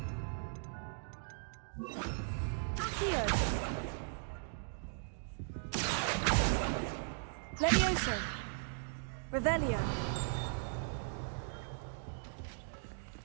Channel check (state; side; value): silent; left; digital silence